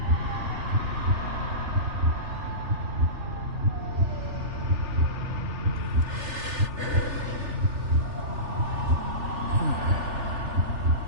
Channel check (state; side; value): late; left; 3.4 ms